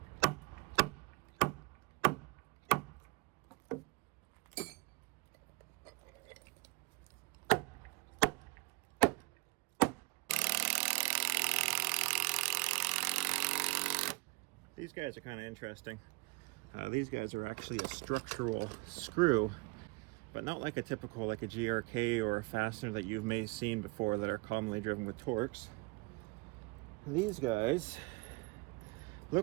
These guys are kind of interesting. These guys are actually a structural screw, but not like a typical, like a GRK or a fastener that you may have seen before that are commonly driven with Torx. These guys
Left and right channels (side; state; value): left; quieter; 25.9 dB